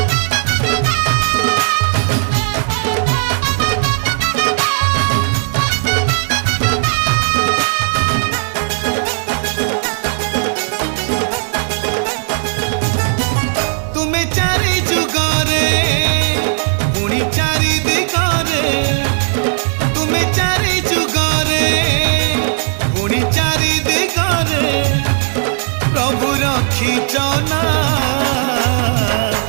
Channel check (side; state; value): left; silent; digital silence